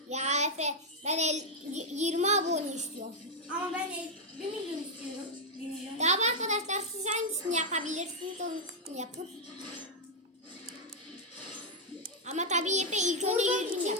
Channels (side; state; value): both; normal; correlation 0.00